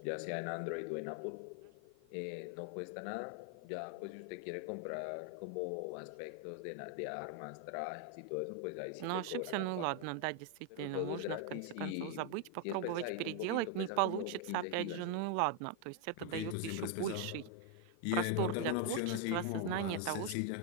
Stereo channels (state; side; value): different; both; correlation 0.01